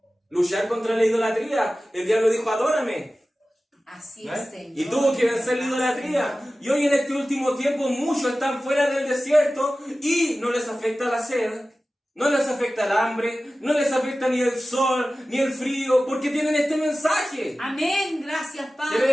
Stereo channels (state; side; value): normal; both; correlation 0.96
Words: Luchar contra la idolatría. El diablo dijo, adórame. Así es, Señor. Y tuvo que vencer la idolatría. Y hoy en este último tiempo muchos están fuera del desierto y no les afecta la sed, no les afecta el hambre, no les afecta ni el sol, ni el frío, porque tienen este mensaje. Amén, gracias, Padre.